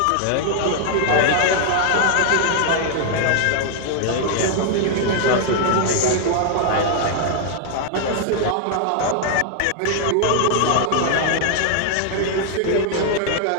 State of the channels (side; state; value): both; different; correlation 0.00